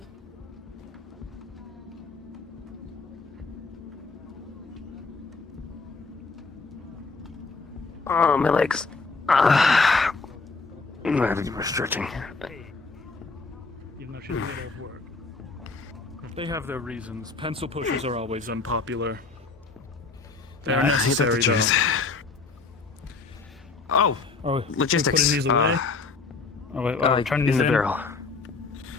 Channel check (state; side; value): quieter; right; 4.2 dB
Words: Oh, my legs. I have to do more stretching. Even though she's a bit old work. They have their reasons. Pencil pushers are always unpopular. They are necessary, though. Oh, logistics. Putting these away? Turning in these the barrel.